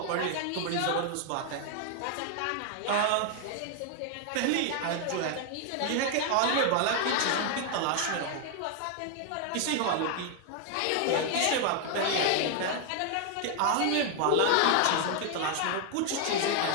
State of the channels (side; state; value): both; different; correlation 0.00